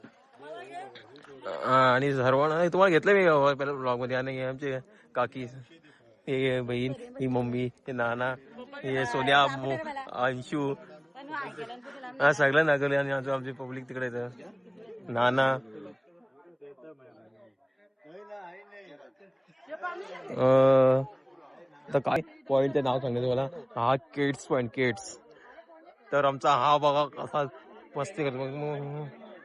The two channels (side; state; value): both; identical; correlation 1.00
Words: आणि सर्वांना तुम्हाला घेतलं मी पहिल्या ब्लॉग मध्ये. आणि आमचे काकी, हे बहीण, ही मम्मी, हे नाना, हे सोन्या, अंशू, हा सगळं नागवले. आणि आमची पब्लिक तिकडे येतं. नाना, तर काय पॉइंटचं नाव सांगायचं मला. हा केट्स पॉइंट, केट्स. तर आमचा हा बघा कसा मस्ती करतो.